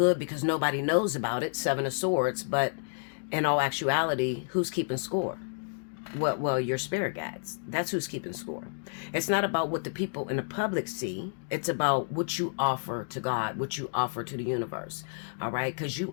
because nobody knows about it, Seven of Swords, but in all actuality, who's keeping score? Well, your spirit guides. That's who's keeping score. It's not about what the people in the public see. It's about what you offer to God, what you offer to the universe. All right? Because you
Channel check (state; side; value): silent; right; digital silence